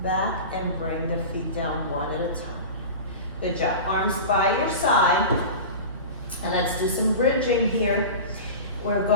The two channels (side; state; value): both; inverted; correlation -0.32